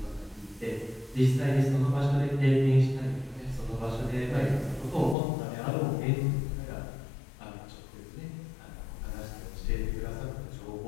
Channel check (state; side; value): drops out; right; at 5.2 s